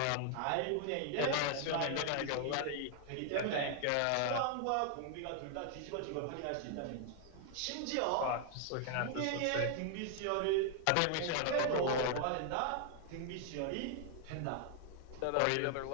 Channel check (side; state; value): both; different; correlation 0.00